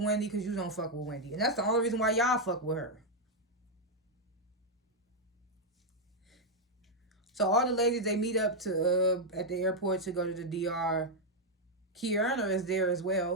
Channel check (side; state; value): both; normal; correlation -0.01